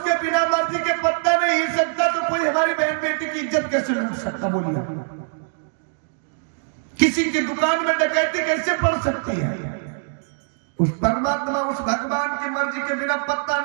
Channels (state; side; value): silent; left; digital silence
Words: बिना मर्जी के पत्ता नहीं हिल सकता तो कोई हमारी बहन बेटी की इज्जत कैसे लूट सकता? बोलिए, किसी की दुकान में डकैती कैसे पड़ सकती है? उस परमात्मा, उस भगवान की मर्जी के बिना पत्ता